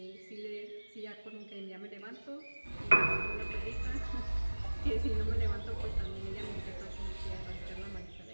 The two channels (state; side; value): inverted; both; correlation -1.00